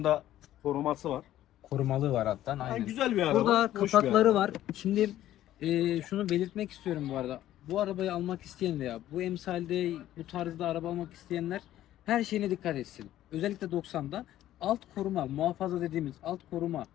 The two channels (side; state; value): right; quieter; 13.2 dB